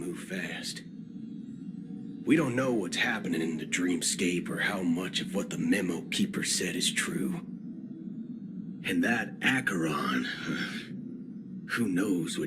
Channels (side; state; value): both; identical; correlation 1.00